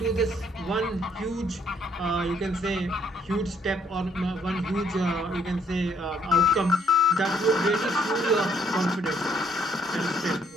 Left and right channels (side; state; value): both; normal; correlation 0.67